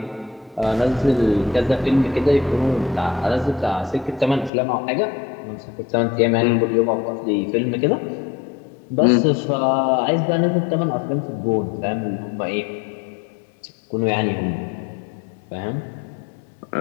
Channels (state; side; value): drops out; right; at 4.5 s